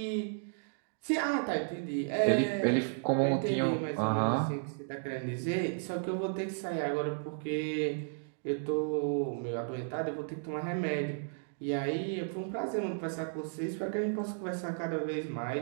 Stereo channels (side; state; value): left; silent; digital silence